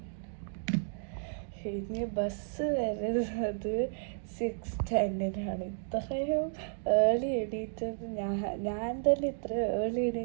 ഇനി ബസ് വരുന്നത് 6:10-നാണ്. ഇത്രയും ഏർലി എണീറ്റത് ഞാൻ തന്നെ ഇത്ര ഏർലി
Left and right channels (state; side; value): silent; left; digital silence